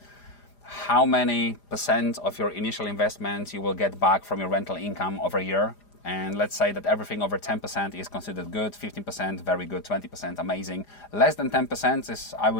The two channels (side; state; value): right; late; 4.9 ms